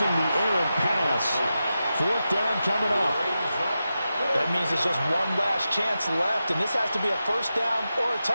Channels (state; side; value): inverted; both; correlation -0.91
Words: the errant pass. Fourth down coming up. That means it's just one last chance left, and this has to be a first down or a